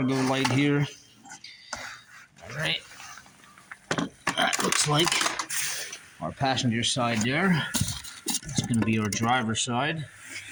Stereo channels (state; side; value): identical; both; correlation 1.00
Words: light here. All right, that looks like our passenger side there. It's going to be our driver's side,